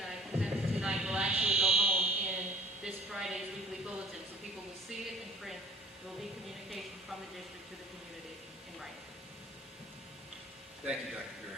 I presented tonight will actually go home in this Friday's weekly bulletin, so people will see it in print. There will be communication from the district to the community in writing. Thank you, Dr.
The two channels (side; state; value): both; normal; correlation 0.50